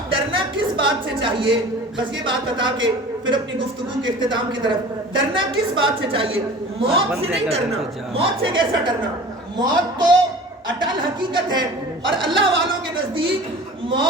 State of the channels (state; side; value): normal; both; correlation 0.41